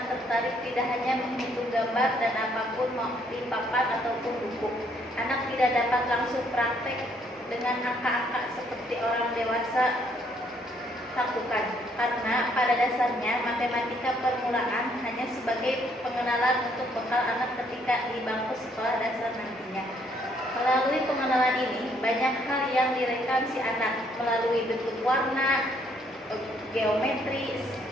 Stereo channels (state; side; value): normal; both; correlation 0.68